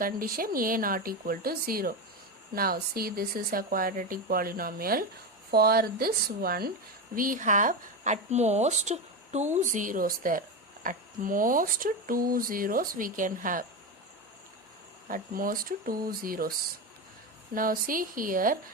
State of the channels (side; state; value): both; normal; correlation 0.16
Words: a not equal to 0. Now see, this is a quadratic polynomial. For this one, we have at most 2 zeros there. At most 2 zeros we can have. At most 2 zeros. Now see here,